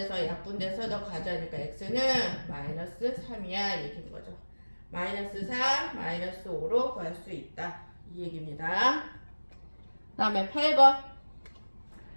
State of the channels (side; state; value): both; inverted; correlation -1.00